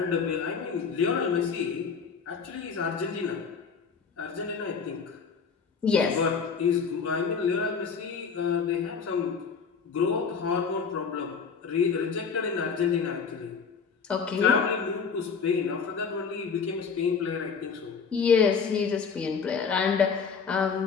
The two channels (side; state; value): right; quieter; 5.8 dB